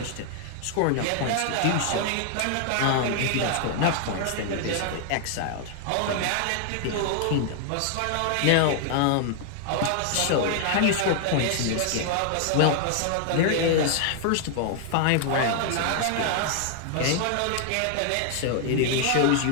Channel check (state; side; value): different; both; correlation 0.00